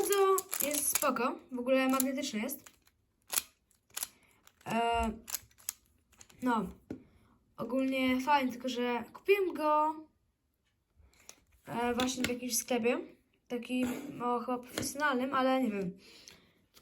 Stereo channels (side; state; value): both; identical; correlation 1.00